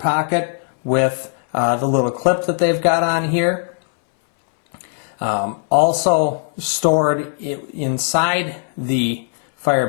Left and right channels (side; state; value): right; silent; 63 dB below the other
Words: with the little clip that they've got on here. Also stored inside the fire